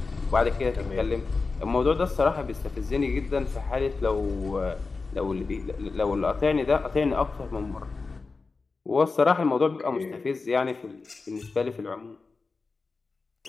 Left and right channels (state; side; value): quieter; right; 4.1 dB